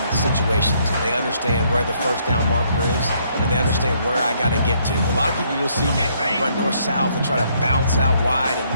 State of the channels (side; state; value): both; inverted; correlation -0.69